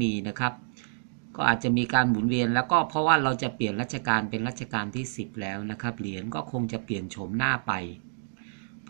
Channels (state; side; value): silent; left; digital silence